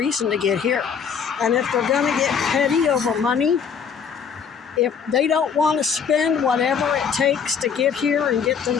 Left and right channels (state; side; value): quieter; right; 6.7 dB